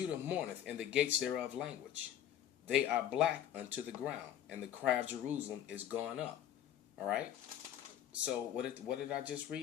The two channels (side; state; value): right; quieter; 10.7 dB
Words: mourneth, and the gates thereof language. They are black unto the ground, and the cry of Jerusalem is gone up. All right. So what did I just